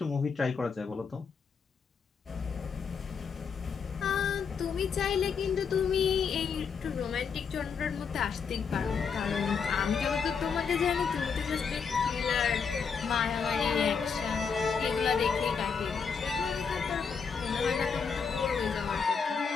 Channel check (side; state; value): right; quieter; 6.0 dB